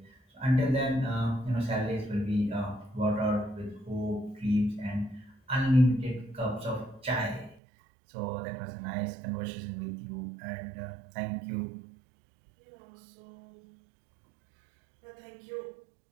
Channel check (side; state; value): left; drops out; at 7.6 s